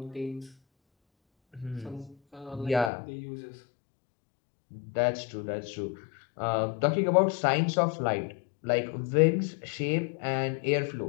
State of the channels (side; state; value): right; drops out; at 2.9 s